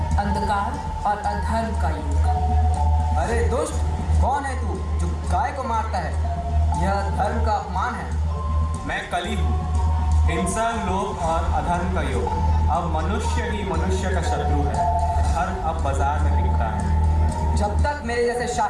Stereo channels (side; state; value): both; identical; correlation 1.00